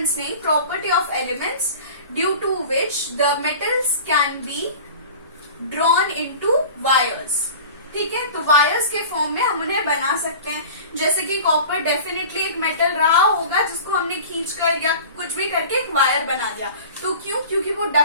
नहीं, property of elements due to which the metals can be drawn into wires. ठीक है, तो वायर्स के फॉर्म में हम उन्हें बना सकते हैं। जैसे कि कॉपर डेफिनेटली एक मेटल रहा होगा जिसको हमने खींचकर या कुछ भी करके एक वायर बना दिया, तो क्यों, क्योंकि वो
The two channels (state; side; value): inverted; both; correlation -0.39